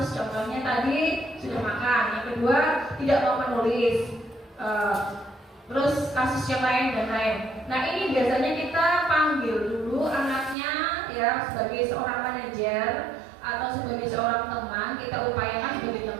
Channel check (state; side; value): drops out; left; at 10.6 s